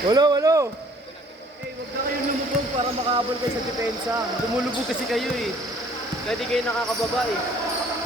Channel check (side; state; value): both; normal; correlation 0.57